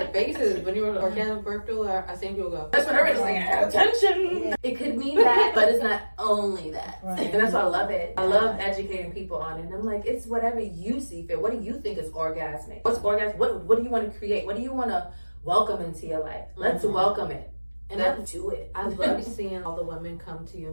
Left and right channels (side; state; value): both; inverted; correlation -1.00